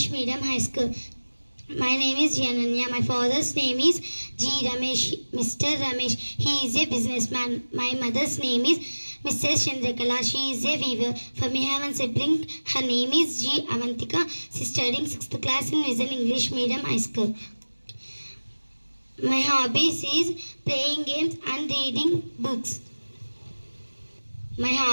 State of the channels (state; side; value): inverted; both; correlation -1.00